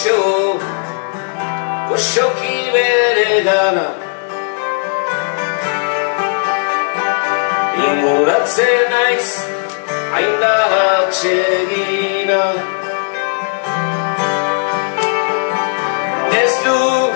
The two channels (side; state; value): right; silent; digital silence